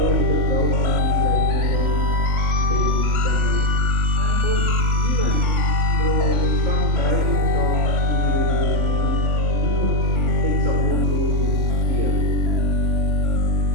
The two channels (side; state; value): left; late; 3.5 ms